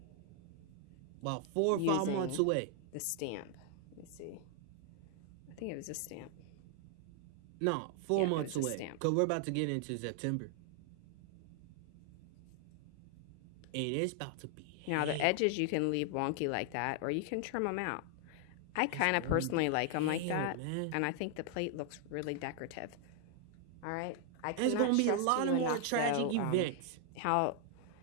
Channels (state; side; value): different; both; correlation 0.00